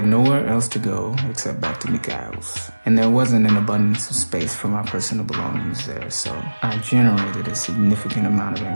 nowhere else to go except back to Mikhail's, and there wasn't an abundance of space for my personal belongings there, so I generated a significant amount of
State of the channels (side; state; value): both; inverted; correlation -1.00